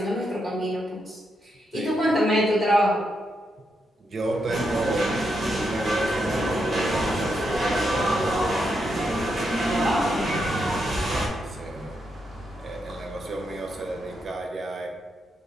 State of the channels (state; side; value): normal; both; correlation 0.82